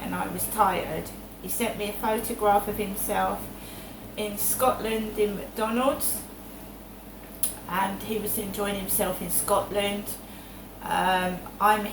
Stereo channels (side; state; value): both; identical; correlation 1.00